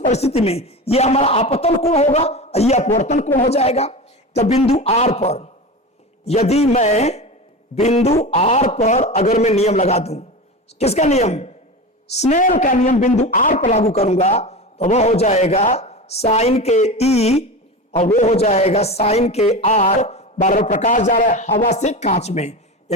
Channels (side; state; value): both; normal; correlation 0.26